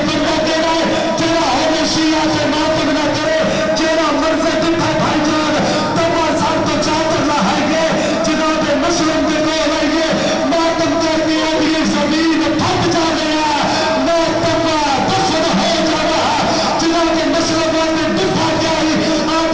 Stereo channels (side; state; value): both; identical; correlation 1.00